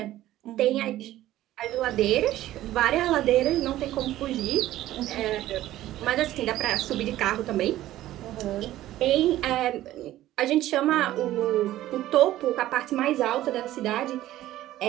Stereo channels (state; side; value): quieter; left; 14.5 dB